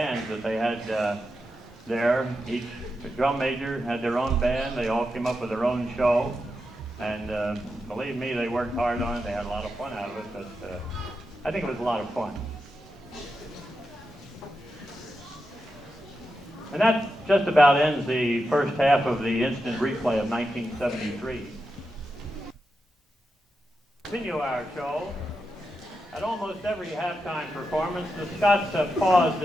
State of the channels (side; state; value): both; normal; correlation 0.88